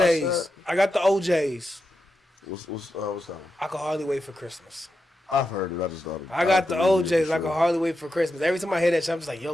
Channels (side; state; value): both; normal; correlation 0.88